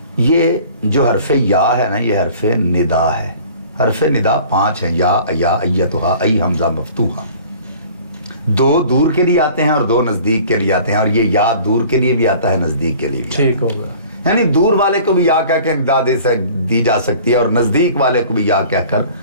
یہ جو حرف یا ہے نا، یہ حرف ندا ہے. حرف ندا 5 ہیں، یا ایتھا، ای حمزہ مفتوحہ. 2 دور کے لیے آتے ہیں اور 2 نزدیک کے لیے آتے ہیں، اور یہ یا دور کے لیے بھی آتا ہے، نزدیک کے لیے بھی. ٹھیک ہوگا. یعنی دور والے کو بھی یا کہہ کے ندا دی جا سکتی ہے، اور نزدیک والے کو بھی یا کہہ کر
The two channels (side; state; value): both; inverted; correlation -0.47